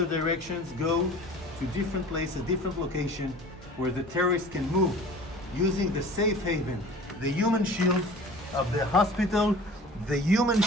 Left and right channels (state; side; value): normal; both; correlation 0.43